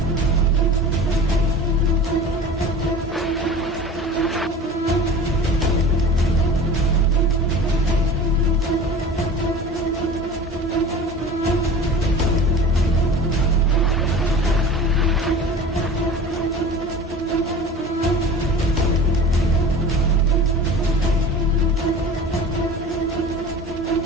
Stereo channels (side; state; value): both; normal; correlation 0.38